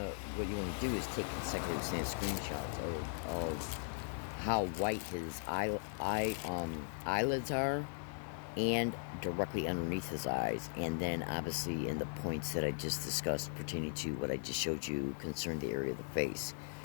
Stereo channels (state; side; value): silent; right; digital silence